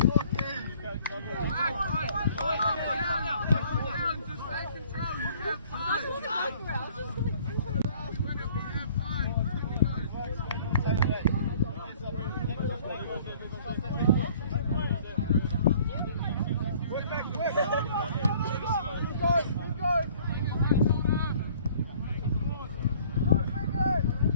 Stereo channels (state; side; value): inverted; both; correlation -0.55